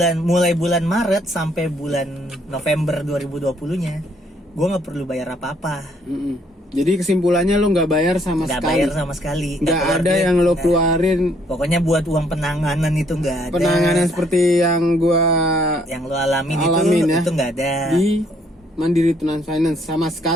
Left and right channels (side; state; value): both; normal; correlation 0.67